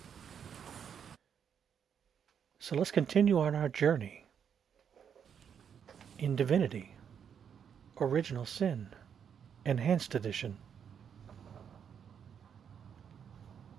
So let's continue on our journey in Divinity, Original Sin, Enhanced Edition.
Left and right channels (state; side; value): quieter; left; 7.8 dB